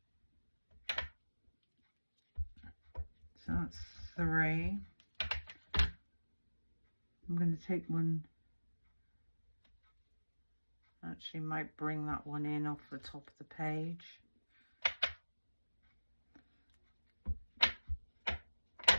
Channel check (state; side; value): inverted; both; correlation -1.00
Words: So that's 3. I'm going to take one, actually might bring that one in off the top of the page.